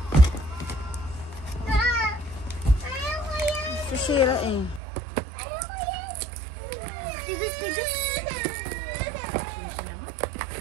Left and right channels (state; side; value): drops out; left; at 4.8 s